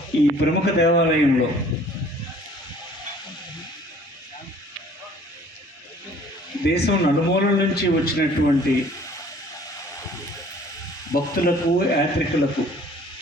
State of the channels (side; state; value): both; normal; correlation 0.54